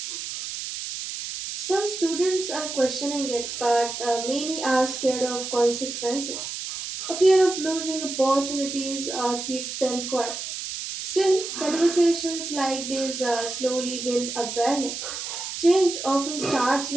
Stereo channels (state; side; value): noise; right; hiss, 6 dB below the sound